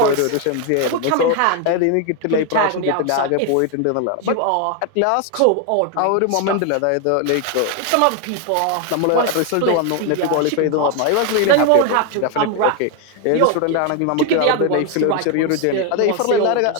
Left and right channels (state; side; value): different; both; correlation 0.01